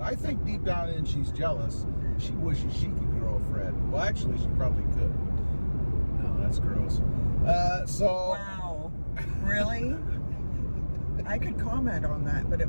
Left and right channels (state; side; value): inverted; both; correlation -1.00